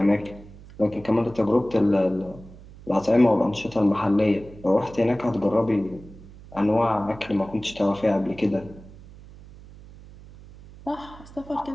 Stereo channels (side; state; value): right; noise; hum, 19 dB below the sound